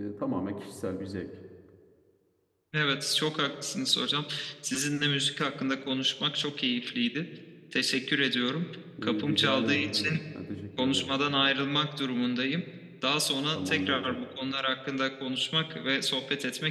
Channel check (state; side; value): identical; both; correlation 1.00